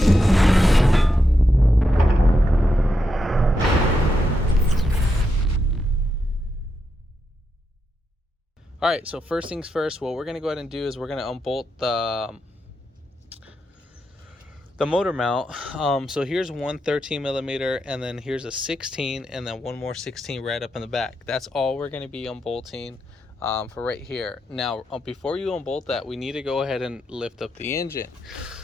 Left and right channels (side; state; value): both; normal; correlation 0.84